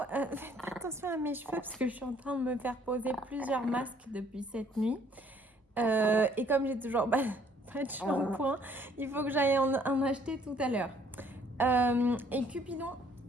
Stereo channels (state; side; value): normal; both; correlation 0.61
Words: Faites attention à mes cheveux parce que je suis en train de me faire poser plusieurs masques depuis cette nuit. Et comme j'ai toujours pas de shampoing, il faut que j'aille en acheter tout à l'heure. Et Cupidon,